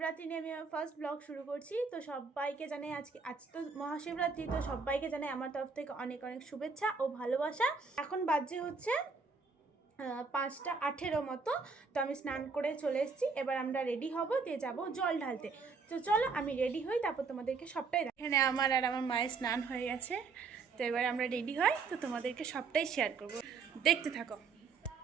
নিয়ে আমি আমার ফার্স্ট ব্লগ শুরু করছি। তো সবাইকে জানাই আজ তো মহাশিবরাত্রি, তো সবাইকে জানাই আমার তরফ থেকে অনেক অনেক শুভেচ্ছা ও ভালোবাসা। এখন বাজে হচ্ছে 5:18 মতো। তো আমি স্নান করে চলে এসেছি। এবার আমরা রেডি হব, দিয়ে যাব জল ঢালতে। তো চলো আমি রেডি হই, তারপর তোমাদেরকে সবটাই এখানে আমার আর আমার মায়ের স্নান হয়ে গেছে। তো এবার আমরা রেডি হই, তো তোমাদেরকে সবটাই শেয়ার করব, দেখতে থাকো।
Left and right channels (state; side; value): quieter; left; 4.8 dB